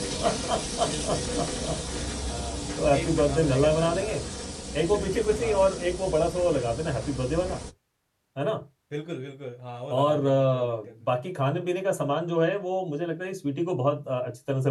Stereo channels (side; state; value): both; identical; correlation 1.00